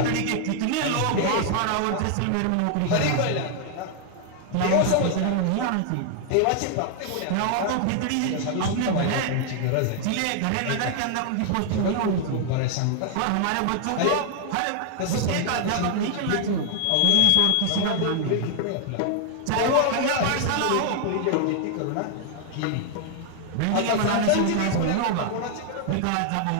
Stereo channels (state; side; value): different; both; correlation 0.00